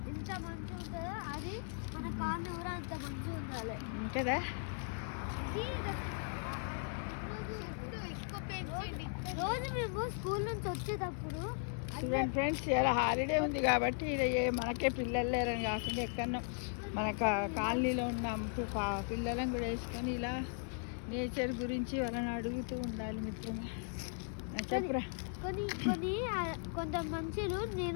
ఉంటుందో అది మన కాళ్ళు కూడా అంత మంచిగా ఉండాలి కదా. రోజు మేము స్కూల్ నుంచి వచ్చేటప్పుడు చూడండి ఫ్రెండ్స్, ఇలా హాలిడే ఉంది కాబట్టి మనకే పిల్లలు లేరని కాకుండా ఎక్కడో మన కాలనీలో ఉన్న పిల్లలను కూడా వేసుకొని ఇలా నేచర్ గురించి వాళ్ళని అడుగుతూ ఉండాలి మిత్రమా. చెప్పురా. కొంత మనుషులు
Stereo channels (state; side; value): silent; right; 53 dB below the other